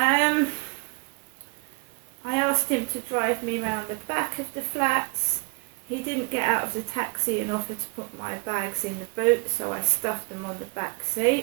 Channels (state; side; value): quieter; left; 32.6 dB